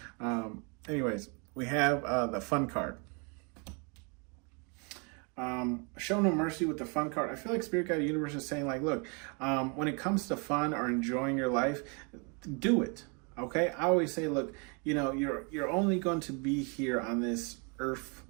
Anyways, we have the fun card. Show no mercy with the fun card. I feel like Spirit Guide Universe is saying like, look, when it comes to fun or enjoying your life, do it. Okay? I always say, look, you're only going to be here on this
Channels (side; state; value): left; quieter; 34.2 dB